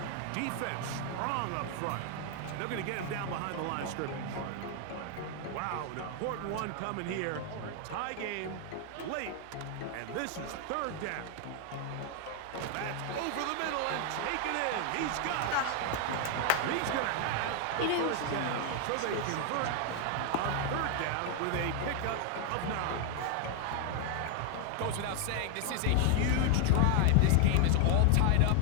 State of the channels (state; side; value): different; both; correlation 0.00